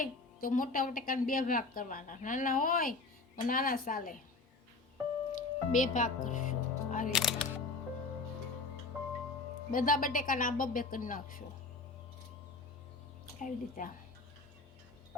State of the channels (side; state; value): right; quieter; 3.8 dB